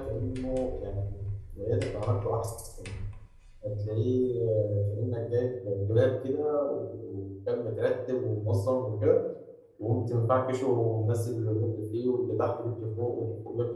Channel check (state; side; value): identical; both; correlation 1.00